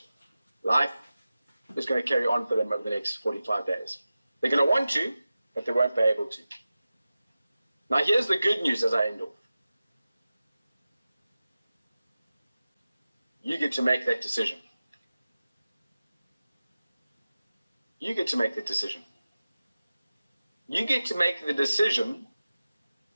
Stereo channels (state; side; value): inverted; both; correlation -0.95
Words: Life is going to carry on for them over the next 45 days. They're going to want to, but they won't be able to. Now here's the good news as I end off. You get to make that decision. You get to make that decision. You get to make the decision